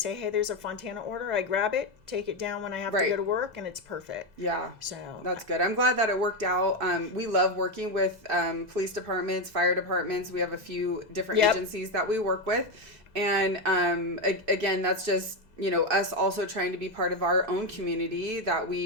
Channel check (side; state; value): both; normal; correlation 0.09